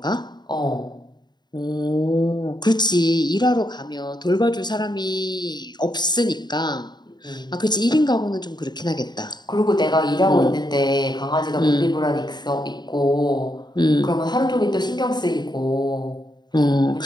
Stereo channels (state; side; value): late; right; 0.21 ms